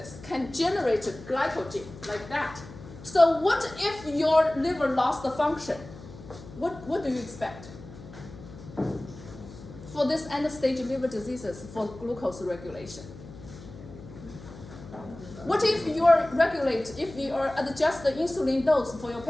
can generate glycogen like that. So what if your liver lost the function? What do you expect? For this end-stage liver diseases for glucose regulation. What if you adjust the insulin dose for your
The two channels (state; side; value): noise; left; hum, 16 dB below the sound